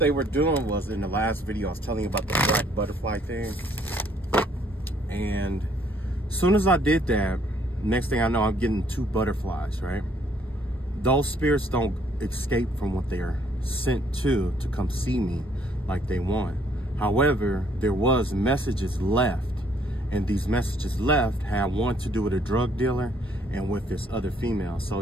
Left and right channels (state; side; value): normal; both; correlation 0.65